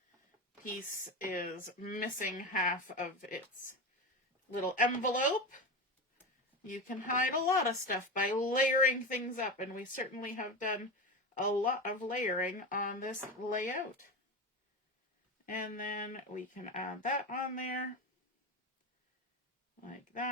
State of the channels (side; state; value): both; normal; correlation 0.23